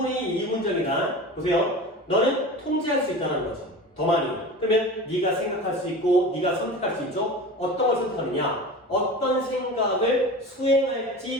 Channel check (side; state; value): both; normal; correlation 0.33